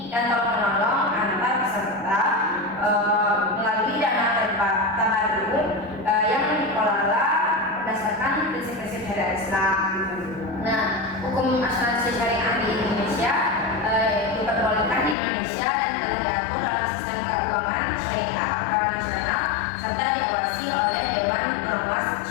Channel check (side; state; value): right; drops out; at 15.2 s